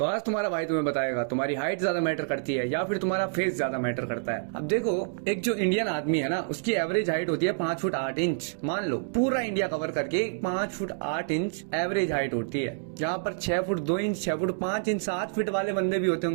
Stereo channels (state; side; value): silent; left; digital silence